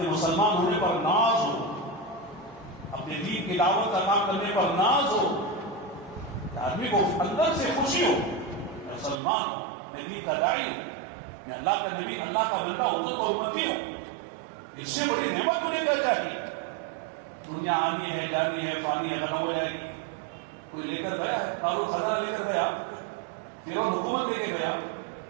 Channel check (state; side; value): drops out; left; at 9.2 s